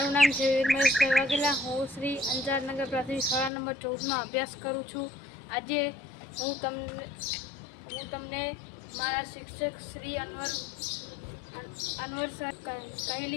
નામ છે વીર મહેશભાઈ વાઘેલા. હું શ્રી અંજારનગર પ્રાથમિક શાળા નંબર 14માં અભ્યાસ કરું છું. આજે હું તમને મારા શિક્ષક શ્રી અનવર સર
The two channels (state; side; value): drops out; right; at 3.5 s